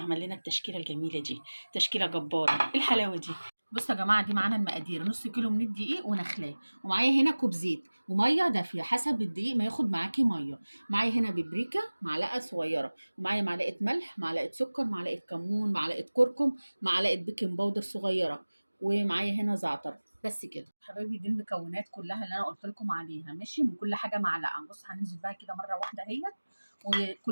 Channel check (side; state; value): both; inverted; correlation -1.00